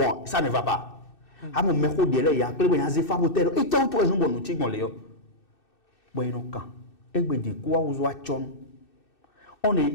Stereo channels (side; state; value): right; late; 2.6 ms